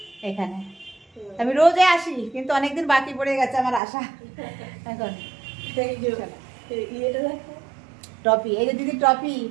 এখানে আমি রোজে আসি, কিন্তু অনেকদিন বাকি পড়ে গেছে আমার আসা। এখন ট্রফি, এই যে দিদি ট্রফি,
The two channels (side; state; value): left; drops out; at 3.8 s